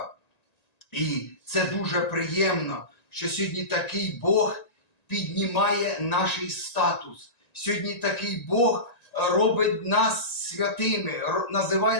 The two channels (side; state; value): right; late; 1.9 ms